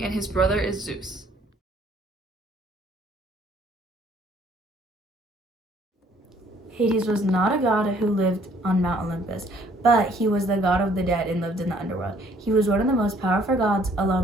and his brother is Zeus. Hades was not a god who lived on Mount Olympus, but he was the god of the dead and lived in the underworld. He was one of the most powerful gods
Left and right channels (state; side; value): normal; both; correlation 0.61